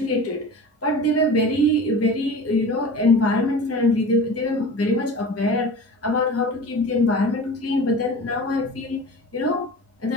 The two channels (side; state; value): both; normal; correlation 0.36